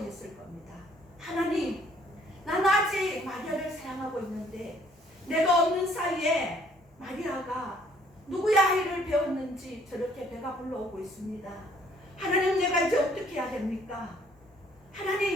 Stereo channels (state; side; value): normal; both; correlation 0.62